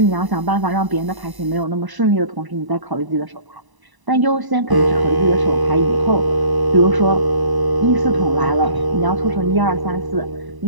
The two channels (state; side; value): late; left; 1.0 ms